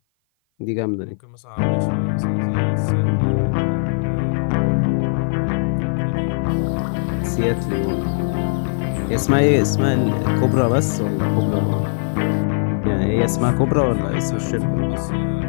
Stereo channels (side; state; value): right; silent; 56 dB below the other